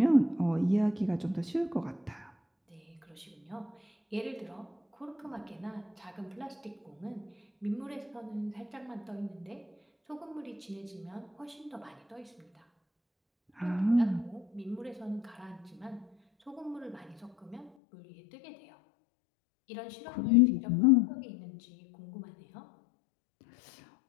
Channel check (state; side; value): drops out; right; at 17.7 s